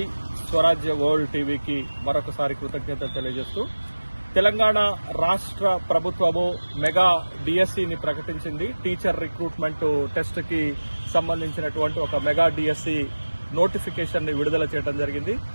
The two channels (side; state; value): both; inverted; correlation -1.00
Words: స్వరాజ్య వరల్డ్ టీవీకి మరొకసారి కృతజ్ఞతలు తెలియజేస్తూ, తెలంగాణ రాష్ట్ర ప్రభుత్వము మెగా డిఎస్సిని ప్రకటించింది. టీచర్ రిక్రూట్మెంట్ టెస్ట్ కి సంబంధించినటువంటి ఒక మెగా డిఎస్సి నోటిఫికేషన్ ని విడుదల చేయడం జరిగింది.